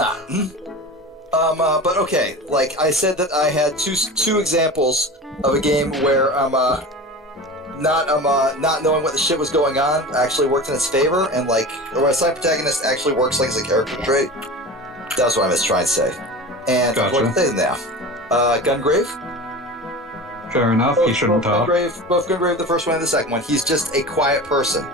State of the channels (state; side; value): normal; both; correlation 0.33